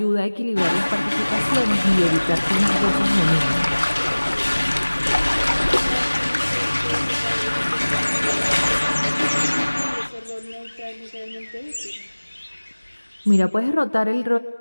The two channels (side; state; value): both; inverted; correlation -1.00